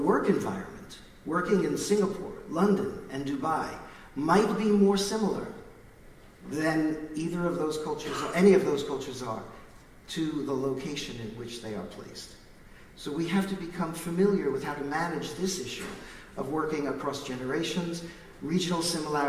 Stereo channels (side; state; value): both; identical; correlation 1.00